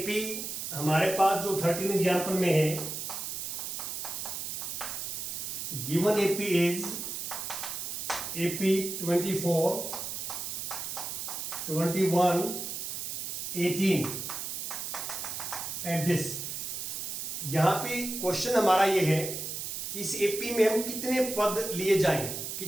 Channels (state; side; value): noise; right; hiss, 5 dB below the sound